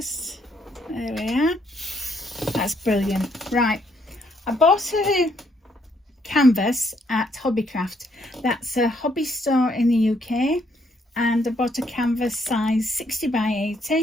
There we are. That's brilliant. Right, I bought a canvas at Hobbycraft. That's a hobby store in the UK, and I bought a canvas size 60 by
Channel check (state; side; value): normal; both; correlation 0.71